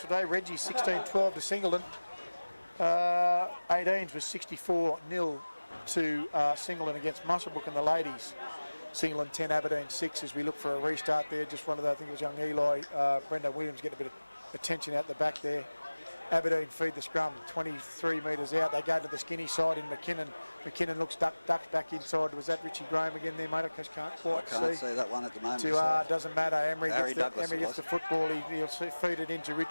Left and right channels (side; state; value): both; inverted; correlation -1.00